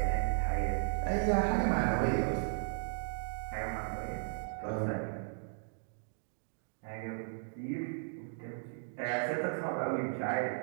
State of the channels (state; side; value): silent; left; digital silence